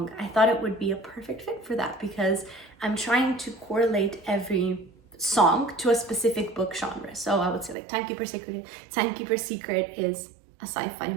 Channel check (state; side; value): drops out; left; at 7.8 s